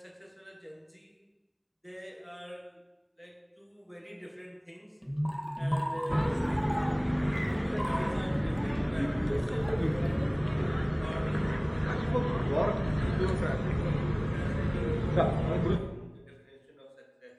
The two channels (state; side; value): identical; both; correlation 1.00